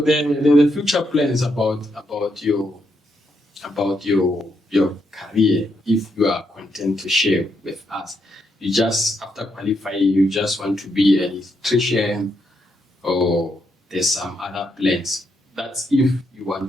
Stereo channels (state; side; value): normal; both; correlation 0.79